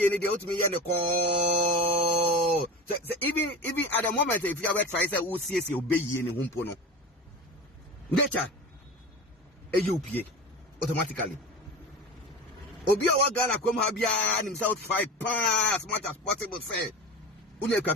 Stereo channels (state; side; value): normal; both; correlation 0.30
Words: any the ultimate and the call? So even at the moment, if you have tried to see obey any humpono. Nature a UPA automatically. Obia Wagana come Habia and himself 5 pounds as much as possible. Say, Unia